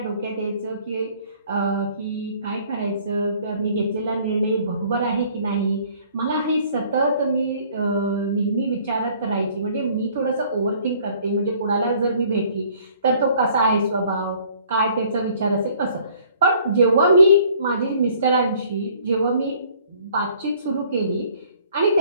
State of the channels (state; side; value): inverted; both; correlation -0.57